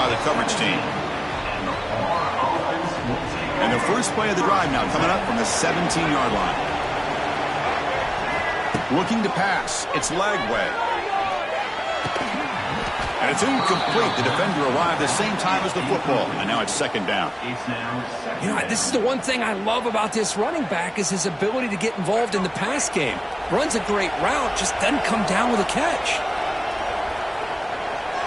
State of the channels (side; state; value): both; identical; correlation 1.00